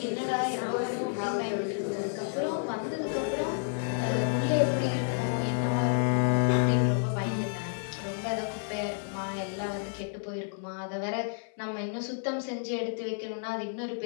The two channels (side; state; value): right; silent; 58 dB below the other